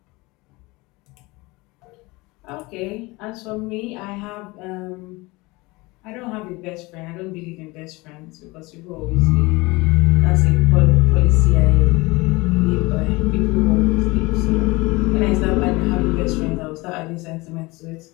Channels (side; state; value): right; quieter; 23.2 dB